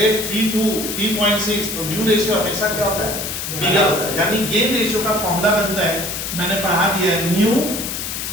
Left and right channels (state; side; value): noise; left; hiss, 5 dB below the sound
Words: 3:2 3.6, तो न्यू रेशियो हमेशा क्या होता है, बिगर होता है। यानी गेन रेशियो का फॉर्मूला बनता है, मैंने पढ़ा दिया है, न्यू